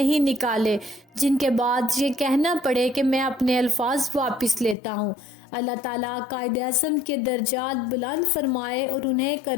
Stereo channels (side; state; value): right; drops out; at 4.8 s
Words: نکالے جن کے بعد یہ کہنا پڑے کہ میں اپنے الفاظ واپس لیتا ہوں۔ اللہ تعالیٰ قائد اعظم کے درجات بلند فرمائے اور انہیں